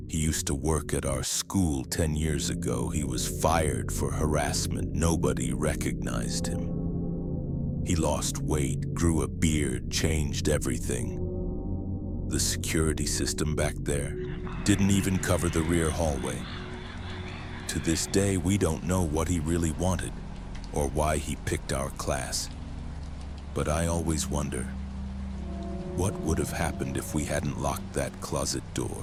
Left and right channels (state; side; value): identical; both; correlation 1.00